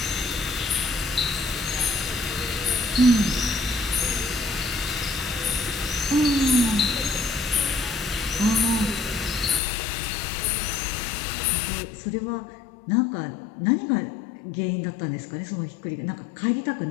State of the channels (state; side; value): drops out; right; at 9.6 s